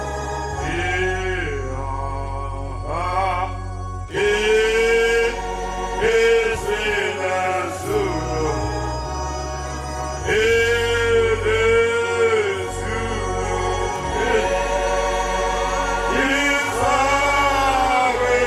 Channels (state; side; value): identical; both; correlation 1.00